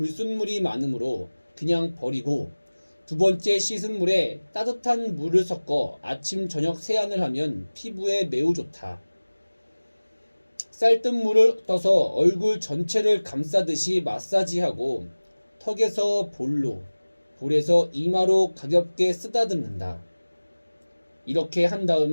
많으므로 그냥 버리고 두 번째 씻은 물에 따뜻한 물을 섞어 아침 저녁 세안을 하면 피부에 매우 좋다. 쌀뜨물을 떠서 얼굴 전체를 감싸듯이 마사지하고 턱에서 볼에서 이마로 가볍게 쓰다듬는다. 이렇게 한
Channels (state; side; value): inverted; both; correlation -1.00